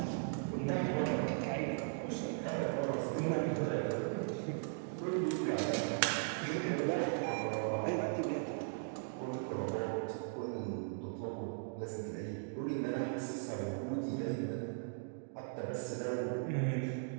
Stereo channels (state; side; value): silent; left; digital silence